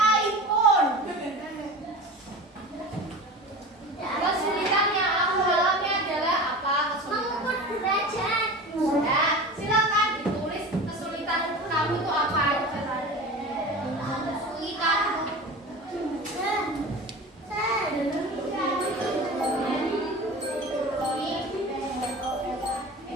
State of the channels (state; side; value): normal; both; correlation 0.34